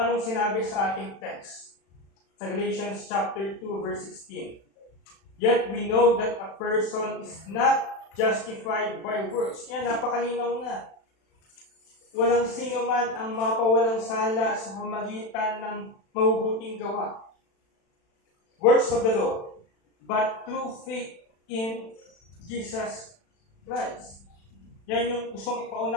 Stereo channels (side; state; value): right; late; 36 ms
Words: sinabi sa ating text? Sa Galatians chapter 2 verse 16. Yet we know that a person is not justified by works. Yan, napakalinaw na. Walang sino man ang mapawalang sala sa pamagitan ng mabubuting gawa. Works of the law, but through faith in Jesus Christ. Yan yung gustong